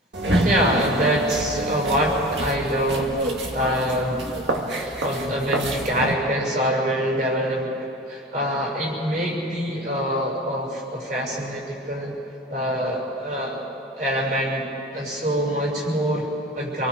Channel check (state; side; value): normal; both; correlation 0.36